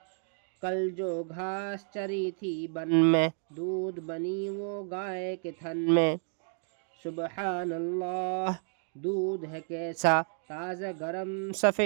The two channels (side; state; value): left; silent; 55 dB below the other